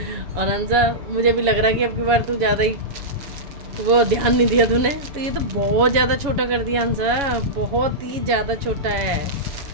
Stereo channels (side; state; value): left; late; 7.1 ms